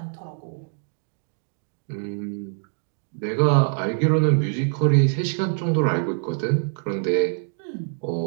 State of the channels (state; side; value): silent; left; 62 dB below the other